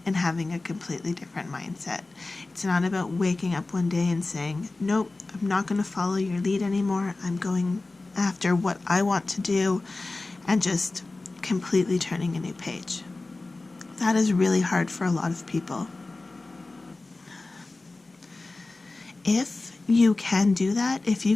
and having a completely different mindset. It's not about waking up one day and saying, nope, I'm not going to follow your lead anymore. I'm going after what I want to do, and just completely turning a new page. That is really hard for a lot of people. If you can do that, if you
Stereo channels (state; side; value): quieter; right; 3.2 dB